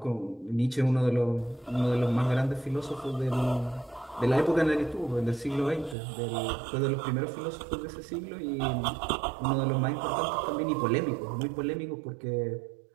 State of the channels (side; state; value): left; drops out; at 6.0 s